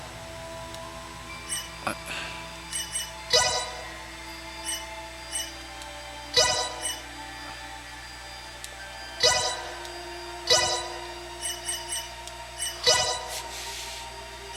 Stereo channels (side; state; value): both; identical; correlation 1.00